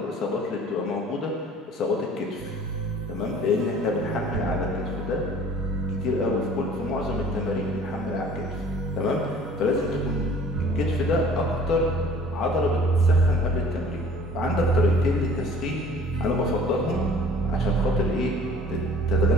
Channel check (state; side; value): normal; both; correlation 0.50